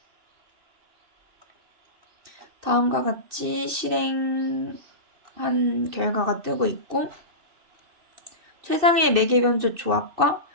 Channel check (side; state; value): left; late; 2.7 ms